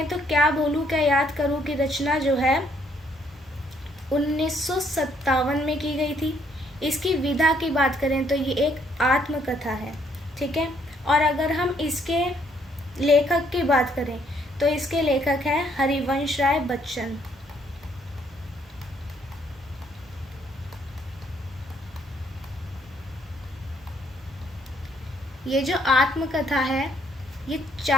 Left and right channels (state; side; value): normal; both; correlation 0.68